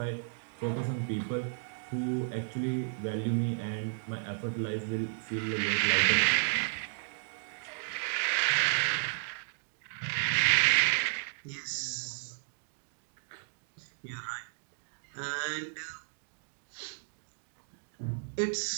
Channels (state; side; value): silent; left; digital silence